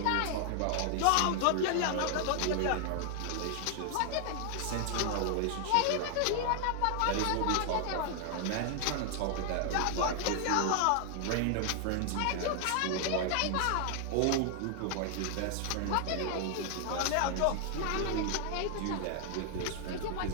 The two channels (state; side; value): different; both; correlation 0.00